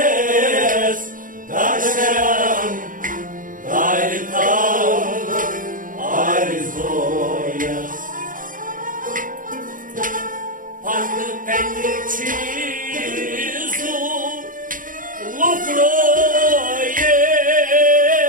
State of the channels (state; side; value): late; left; 0.39 ms